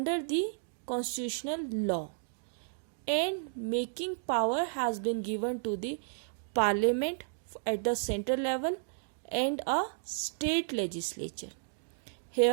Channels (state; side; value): silent; left; digital silence